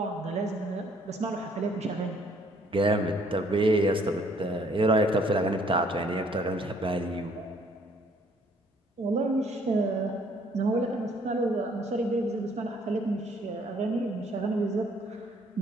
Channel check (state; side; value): normal; both; correlation 0.62